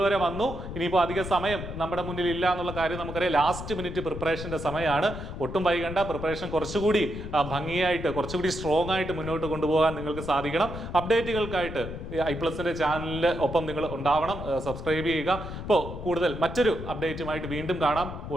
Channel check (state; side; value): noise; left; rumble, 9 dB below the sound